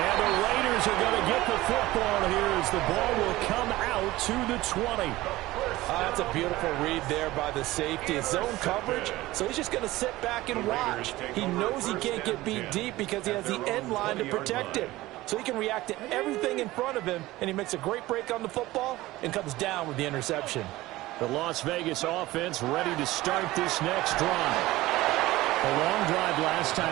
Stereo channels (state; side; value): quieter; left; 17.9 dB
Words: the Raiders are going to get the football here as the ball will come out to the 20. That's a beautiful read there by the safety. It's zone coverage, so he's just going to sit back and watch. He knows he can't get beat deep because he has the end line to protect him. So he can react to everything in front of him, and he makes a great break on the football and comes down with the interception. The Las Vegas offense ready to start this next drive. A long drive last